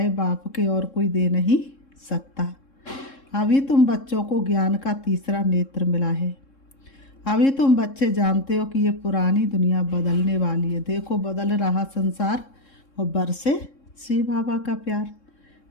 बाप के और कोई दे नहीं सकता। अभी तुम बच्चों को ज्ञान का तीसरा नेत्र मिला है। अभी तुम बच्चे जानते हो कि ये पुरानी दुनिया बदलने वाली है। देखो बदल रहा संसार और बरसे शिव बाबा का प्यार।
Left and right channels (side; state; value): right; late; 3.7 ms